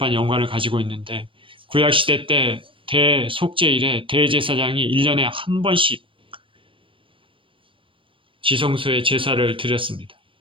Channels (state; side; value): late; left; 0.25 ms